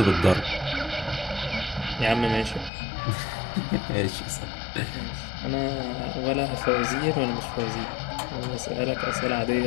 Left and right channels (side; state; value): right; drops out; at 2.7 s